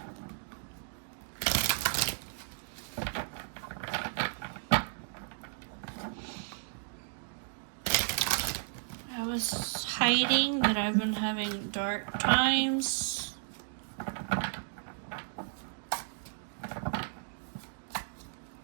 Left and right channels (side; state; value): left; silent; digital silence